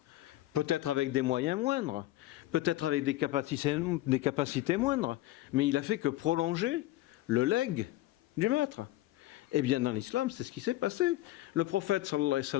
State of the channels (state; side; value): quieter; right; 16.1 dB